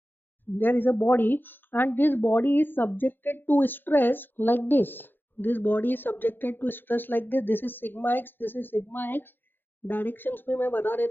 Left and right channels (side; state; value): right; late; 0.097 ms